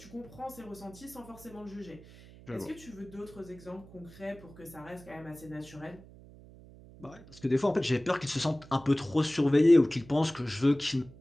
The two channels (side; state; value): right; noise; hum, 20 dB below the sound